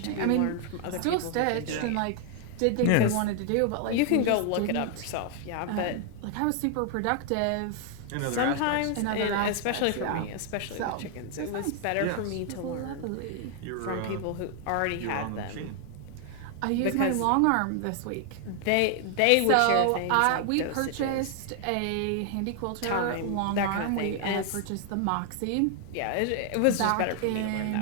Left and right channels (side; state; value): both; different; correlation 0.00